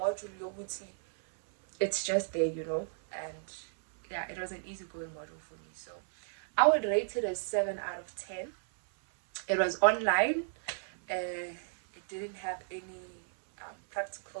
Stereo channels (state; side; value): silent; left; 55 dB below the other